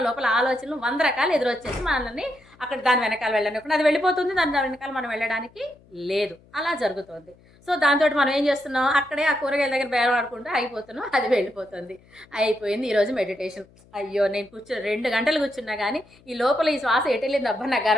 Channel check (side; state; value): left; noise; hum, 28 dB below the sound